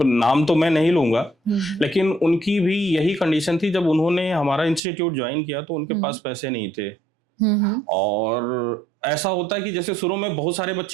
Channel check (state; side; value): drops out; left; at 4.8 s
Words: नाम तो मैं नहीं लूंगा, लेकिन उनकी भी यही कंडीशन थी। जब उन्होंने हमारा इंस्टीट्यूट ज्वाइन किया तो उनके पास पैसे नहीं थे, और ऐसा होता है कि जैसे शुरू में बहुत सारे